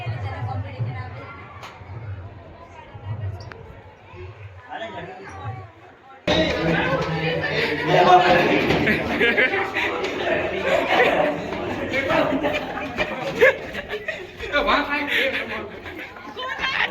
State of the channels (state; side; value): identical; both; correlation 1.00